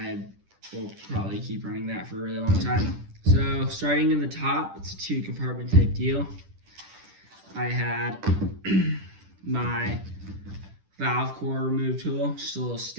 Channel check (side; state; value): left; late; 10 ms